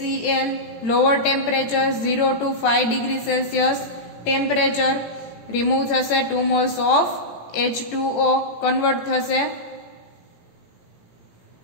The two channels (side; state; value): right; late; 18 ms